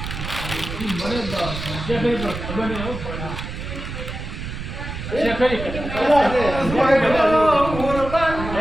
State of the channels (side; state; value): right; noise; rumble, 7 dB below the sound